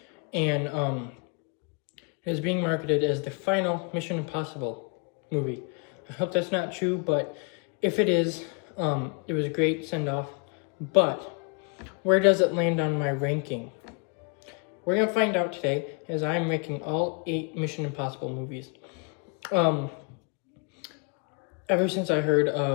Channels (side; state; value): right; quieter; 36.3 dB